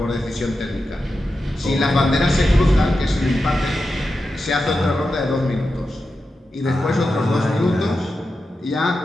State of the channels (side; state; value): both; normal; correlation 0.90